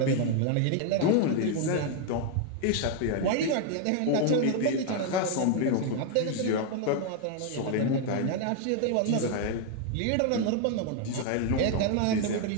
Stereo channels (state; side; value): different; both; correlation 0.00